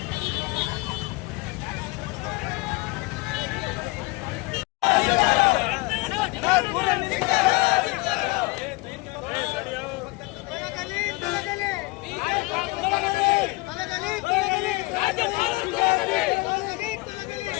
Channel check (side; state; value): right; quieter; 22.8 dB